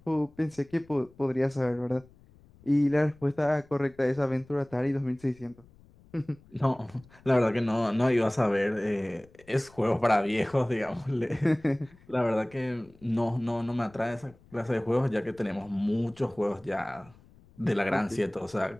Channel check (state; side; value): noise; left; rumble, 27 dB below the sound